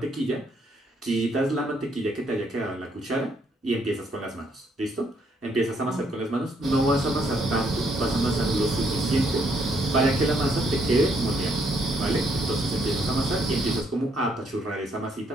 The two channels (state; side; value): normal; both; correlation 0.71